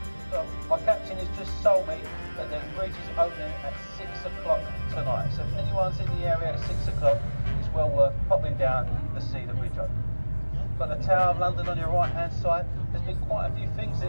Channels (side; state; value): both; inverted; correlation -1.00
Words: So my captain has just told me that the bridge is opening at 6 o'clock tonight. So if anyone's in the area at 6 o'clock, it's well worth popping down to see the bridge open. Got the Tower of London on your right hand side. There's been quite a few things